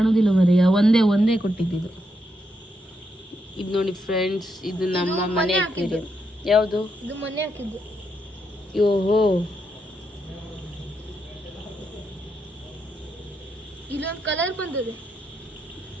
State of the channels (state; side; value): normal; both; correlation 0.81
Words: ಮರಿ, ಒಂದೇ ಕೊಟ್ಟಿದ್ದು. ಇದು ನೋಡಿ ಫ್ರೆಂಡ್ಸ್, ಇದು ನಮ್ಮ ಮನೆ ಅಕ್ವೇರಿಯಂ. ಯಾವುದು? ಇದು ಮನೆ ಹಾಕಿದ್ದು. ಓಹೋ, ಇಲ್ಲೊಂದು ಕಲರ್ ಬಂದಿದೆ.